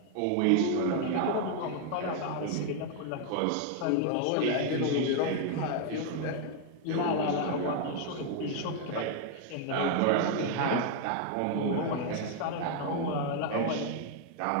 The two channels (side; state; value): both; different; correlation 0.00